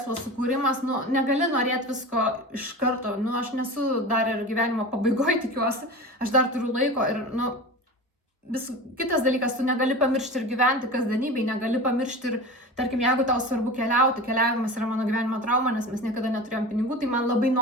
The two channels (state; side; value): normal; both; correlation 0.31